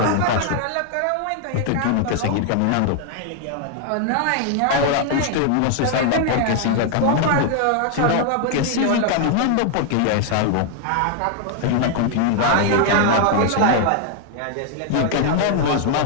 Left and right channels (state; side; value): different; both; correlation 0.00